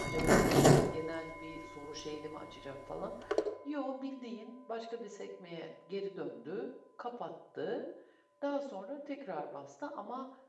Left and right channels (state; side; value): identical; both; correlation 1.00